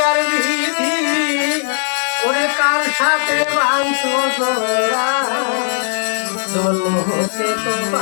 বিধি ওরে কার সাথে বাঁধছো তোরা জন্ম হতে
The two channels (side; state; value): right; silent; digital silence